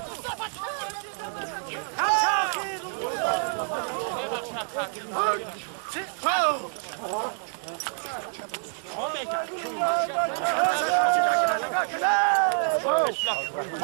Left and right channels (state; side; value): silent; left; 58 dB below the other